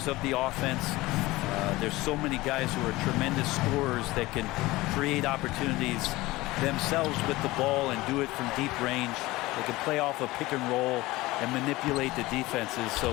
of the offense. There's so many guys who are tremendous scorers that can create opportunities themselves with the ball and do it from deep range. They can play off a pick and roll and manipulate the defenses. So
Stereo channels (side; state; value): right; quieter; 19.6 dB